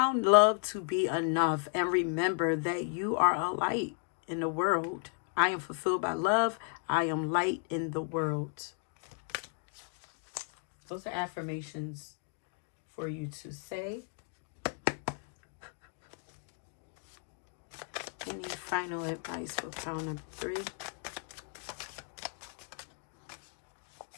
love to be enough. And remember that you are a light in the world. I am fulfilled by love. I am light in the world. Those are affirmations for you to say. Any final advice for pile number 3?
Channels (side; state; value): right; silent; 55 dB below the other